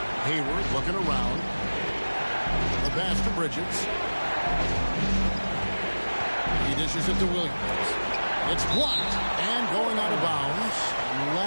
Hayward looking around. The pass to Bridges. He dishes it to Williams. It's blocked and going out of bounds.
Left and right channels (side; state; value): both; inverted; correlation -1.00